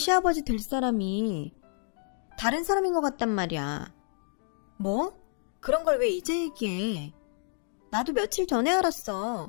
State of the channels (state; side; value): silent; right; 58 dB below the other